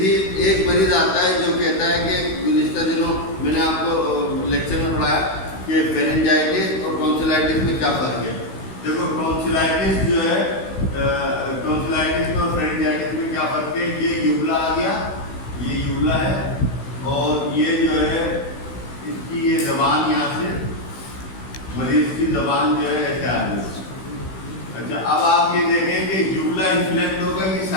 مریض آتا ہے جو کہتا ہے کہ گزشتہ دنوں میں نے آپ کو لیکچر میں پڑھایا کہ فیرنجائٹس اور ٹونسلائٹس میں کیا فرق ہے. دیکھو ٹونسلائٹس جو ہے ٹونسلائٹس اور فیرنجائٹس میں کیا فرق ہے. یہ یوبلا آ گیا, یہ یوبلا ہے, اور یہ جو ہے اس کی یہ زبان یہاں سے مریض کی زبان جو ہے ایسے آ گئی. اچھا, اب آپ یہ دیکھیں کہ یوبلا انفلیکٹ ہوگا کہ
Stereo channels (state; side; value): late; right; 16 ms